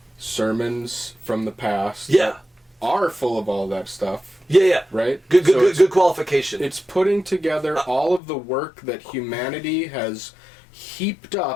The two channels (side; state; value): right; drops out; at 8.2 s